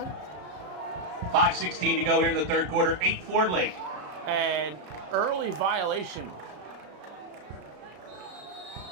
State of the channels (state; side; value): late; left; 33 ms